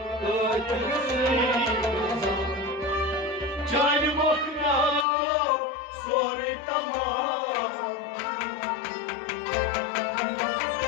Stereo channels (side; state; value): right; drops out; at 5.1 s